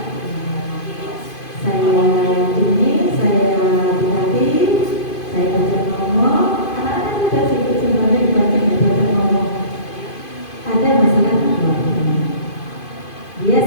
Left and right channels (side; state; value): right; late; 2.5 ms